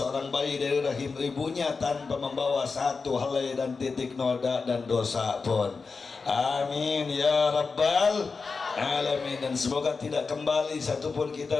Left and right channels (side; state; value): right; quieter; 4.6 dB